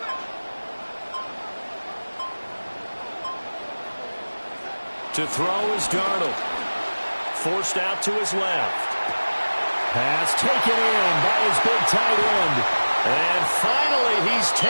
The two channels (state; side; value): inverted; both; correlation -1.00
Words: To throw is Darnold. Forced out to his left. Pass taken in by his big tight end. And finally, he's